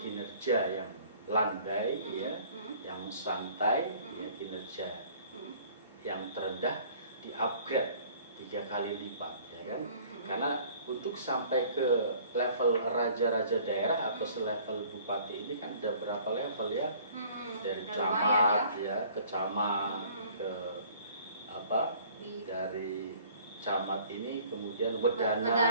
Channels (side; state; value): both; inverted; correlation -0.53